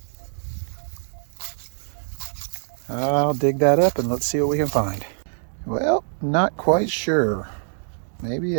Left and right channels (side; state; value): left; silent; digital silence